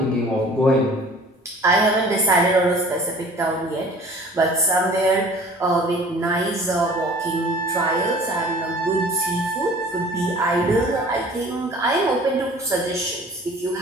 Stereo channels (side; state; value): both; normal; correlation 0.47